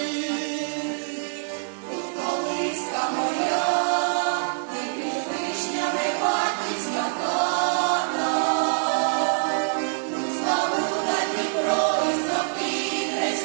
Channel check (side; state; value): left; silent; digital silence